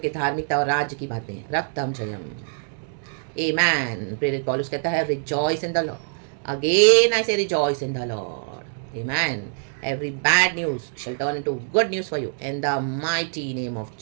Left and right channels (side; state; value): left; silent; digital silence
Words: धार्मिकता और राज्य की बातें, रक्तम जयम, आमेन। प्रेरित पौलुस कहता है rejoice in the lord. Again I say rejoice in the lord, amen. Every bad news shall turn into good news for you in the mighty name of